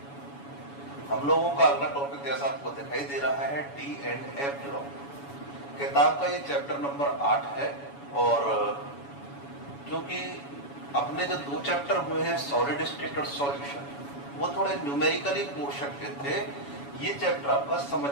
हम लोगों का अगला टॉपिक जैसा आपको दिखाई दे रहा है डी एंड एफ ब्लॉक। किताब का ये चैप्टर नंबर 8 है और क्योंकि अपने जो 2 चैप्टर हुए हैं सॉलिड स्टेट और सॉल्यूशन, वो थोड़े न्यूमेरिकली पोर्शन के थे। ये चैप्टर आपका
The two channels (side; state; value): right; late; 7.1 ms